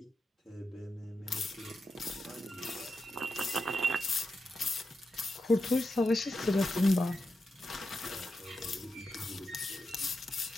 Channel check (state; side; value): normal; both; correlation 0.88